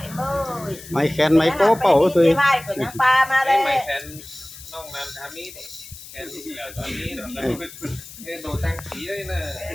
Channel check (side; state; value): left; noise; hiss, 16 dB below the sound